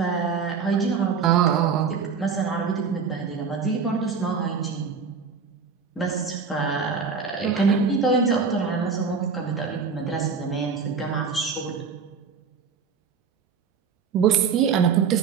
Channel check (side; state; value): left; quieter; 5.7 dB